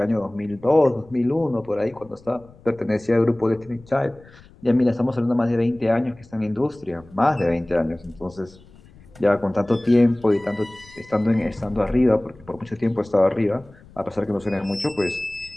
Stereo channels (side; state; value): left; noise; rumble, 24 dB below the sound